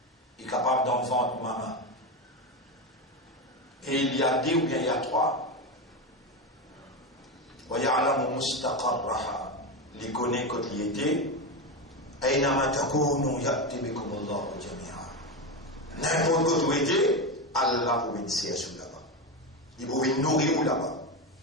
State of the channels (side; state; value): both; normal; correlation 0.15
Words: Il est capable d'en vendre maman. Et il y a deux ou bien il y a trois. Wa ya'lamu mustaqarraha. Il connaît quand il était. Aynama takunu ya'ti bikum Allahu jami'a. N'importe où tu étais, Allah vous bénissait là-bas. Il vous nourrir là-bas.